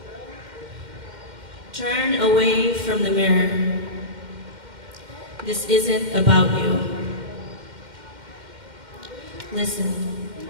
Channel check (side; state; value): left; late; 2.1 ms